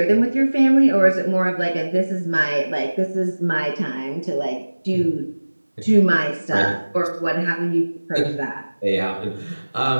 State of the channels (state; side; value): inverted; both; correlation -1.00